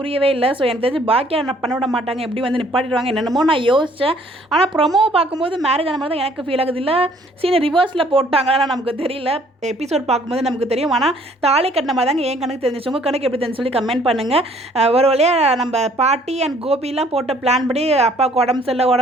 இல்லை. ஸோ எனக்கு தெரிஞ்சு பாக்கியா பண்ண விட மாட்டாங்க, எப்படி வந்து நிப்பாட்டிடுவாங்க என்னென்னமோ நான் யோசித்தேன். ஆனால் ப்ரொமோ பார்க்கும்போது மேரேஜ் ஆன மாதிரி தான் எனக்கு ஃபீல் ஆகுது. இல்லை சீனை ரிவர்ஸில் போட்டாங்களா நமக்கு தெரியல. எபிசோட் பார்க்கும்போது நமக்கு தெரியும். ஆனால் தாலி கட்டின மாதிரி தாங்க என் கணக்கு தெரிஞ்சிச்சு. உங்கள் கணக்கு எப்படி தெரிஞ்சு சொல்லி கமெண்ட் பண்ணுங்கள். ஒரு வழியாக நம்ம பாட்டி அண்ட் கோபிலாம் போட்ட பிளான் படி அப்பாவுக்கு உடம்பு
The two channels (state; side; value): normal; both; correlation 0.60